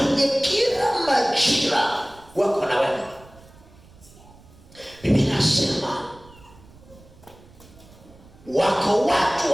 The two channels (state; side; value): noise; right; rumble, 24 dB below the sound